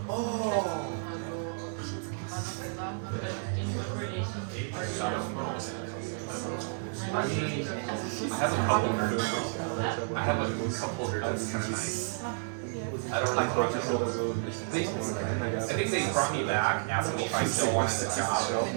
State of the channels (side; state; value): left; silent; 57 dB below the other